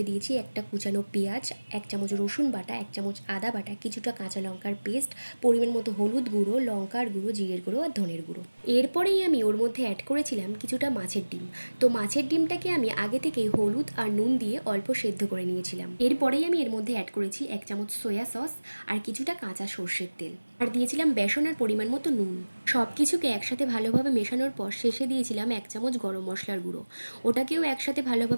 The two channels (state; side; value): inverted; both; correlation -1.00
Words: দিয়েছি একটা কুচানো পেঁয়াজ, 1 চামচ রসুন বাটা, 1 চামচ আদা বাটা, কিছুটা কাঁচা লঙ্কার পেস্ট, পরিমাণ মতো হলুদ গুঁড়ো, লঙ্কার গুঁড়ো, জিরের গুঁড়ো আর ধনের গুঁড়ো। এরপরেই আমি ওর মধ্যে অ্যাড করেছিলাম কিছুটা মাছের ডিম। তো মাছের ডিমটাকে আমি আগে থেকেই হলুদ আর নুন দিয়ে অল্প সেদ্ধ করে নিয়েছিলাম। এরপরেই আমি এর মধ্যে অ্যাড করেছি 1 চামচ সয়া সস আর কিছুটা কাঁচা সর্ষের তেল, আর দিয়েছিলাম বেসন আর পরিমাণ মতো নুন। সব কিছুকে একসাথে ভালোভাবে মেশানোর পর শেষে দিয়েছিলাম 1 চামচ গরম মশলার গুঁড়ো। ওটাকেও একসাথে